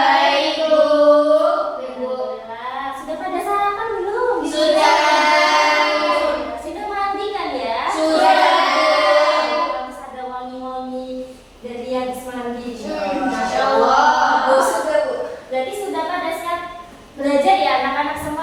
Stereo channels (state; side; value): identical; both; correlation 1.00